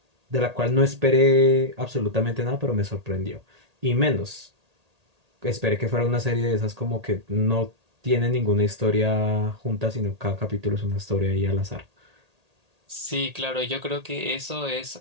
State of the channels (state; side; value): late; left; 1.8 ms